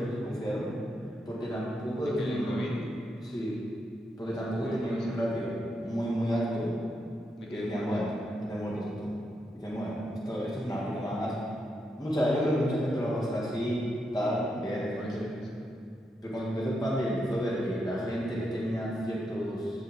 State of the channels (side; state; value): both; normal; correlation 0.83